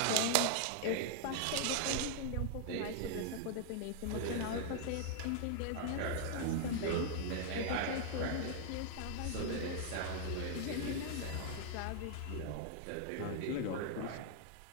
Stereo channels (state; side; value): different; both; correlation 0.00